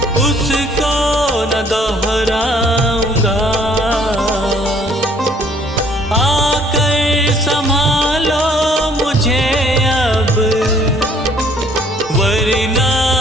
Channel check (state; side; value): normal; both; correlation 0.60